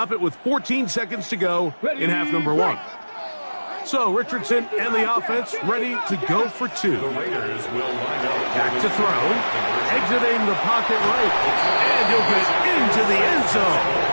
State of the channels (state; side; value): inverted; both; correlation -1.00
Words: it with 14 seconds to go in half number one. So Richardson and the offense ready to go for two. The Raiders will line up. Back to throw, exiting the pocket right, and he'll get into the end zone,